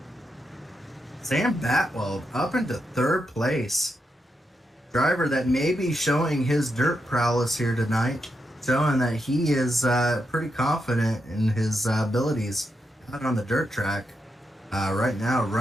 Sam Batwell up into 3rd place. Driver that may be showing his dirt prowess here tonight, showing that he is pretty confident in his abilities out on the dirt track. Right now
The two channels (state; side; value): normal; both; correlation 0.84